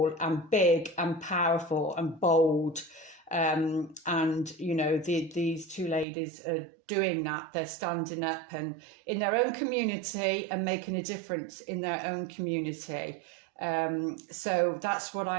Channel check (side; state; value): left; drops out; at 6.1 s